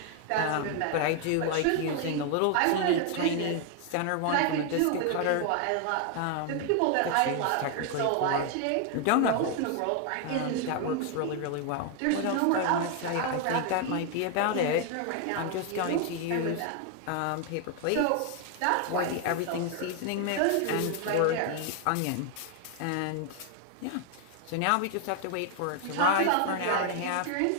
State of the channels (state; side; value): different; both; correlation 0.00